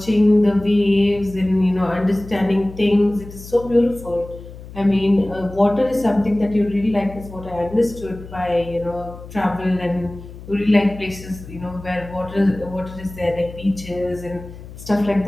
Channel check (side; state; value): left; noise; hum, 15 dB below the sound